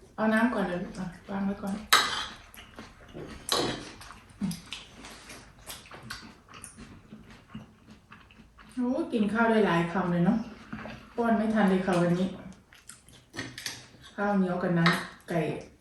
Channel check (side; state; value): both; identical; correlation 1.00